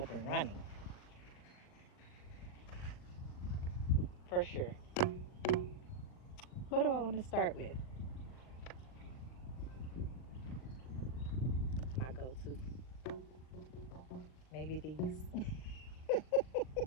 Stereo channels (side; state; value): right; late; 39 ms